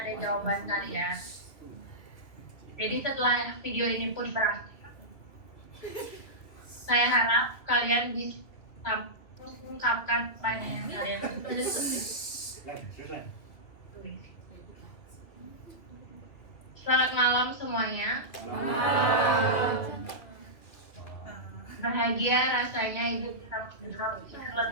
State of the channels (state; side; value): late; right; 2.8 ms